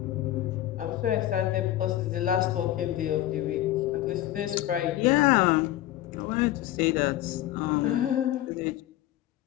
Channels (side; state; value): right; quieter; 14.1 dB